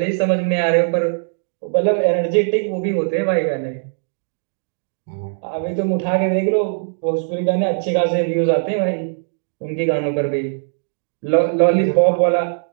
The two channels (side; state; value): left; silent; digital silence